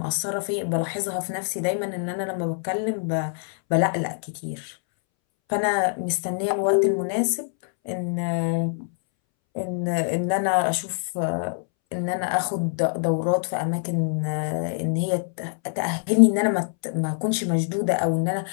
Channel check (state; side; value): silent; right; 62 dB below the other